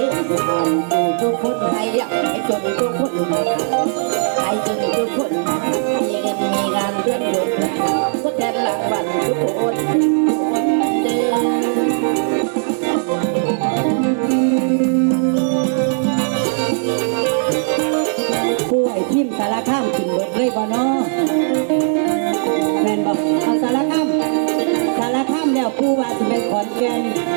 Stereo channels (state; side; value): silent; left; digital silence